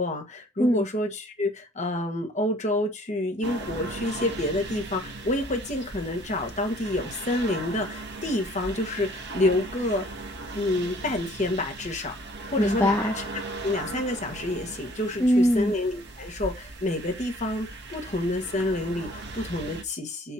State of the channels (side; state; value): both; normal; correlation 0.55